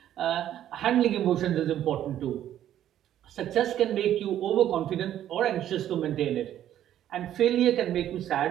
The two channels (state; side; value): quieter; left; 11.5 dB